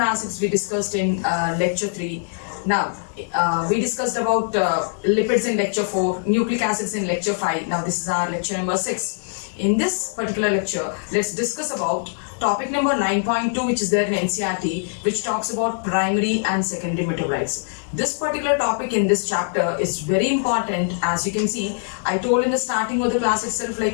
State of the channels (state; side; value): silent; right; digital silence